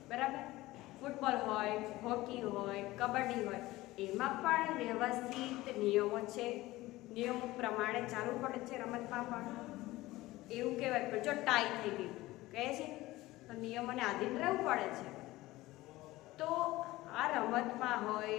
બરાબર, ફૂટબોલ હોય, હોકી હોય, કબડ્ડી હોય, એમાં પણ વ્યવસ્થિત નિયમો છે. નિયમો પ્રમાણે ચાલવું પડે છે. રમતમાં પણ એવું કહેવાય કે જો ટાઈ થઈ ગઈ કહે છે તો નિયમોને આધીન રહેવું પડે છે. તો આ રમતમાં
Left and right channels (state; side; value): quieter; right; 18.3 dB